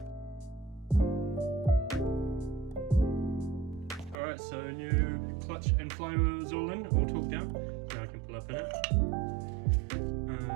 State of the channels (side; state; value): left; drops out; at 4.2 s